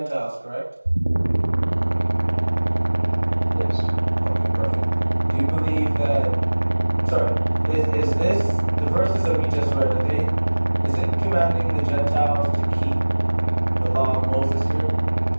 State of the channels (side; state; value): both; inverted; correlation -1.00